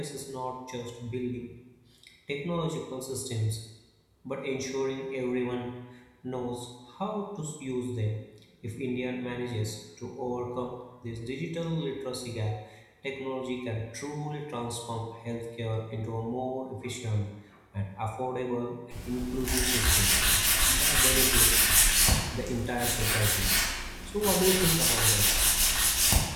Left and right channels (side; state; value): both; identical; correlation 1.00